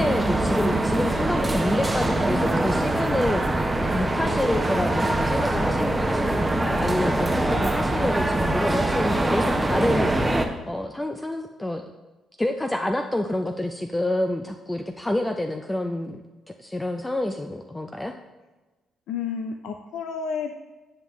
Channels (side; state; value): both; normal; correlation 0.90